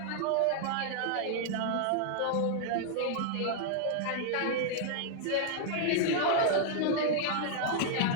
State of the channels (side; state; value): both; different; correlation -0.01